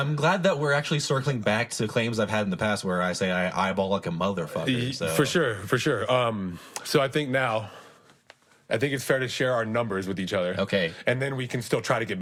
glad that we're actually circling back to claims I've had in the past where I say I eyeball like a motherfucker. So. For sure. So I think it's fair to share our numbers with each other. Okay. And then we can still try to get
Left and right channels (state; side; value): identical; both; correlation 1.00